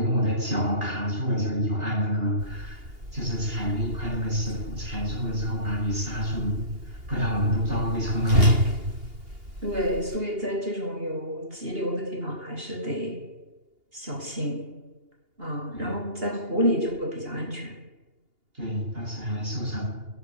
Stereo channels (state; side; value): late; left; 2.8 ms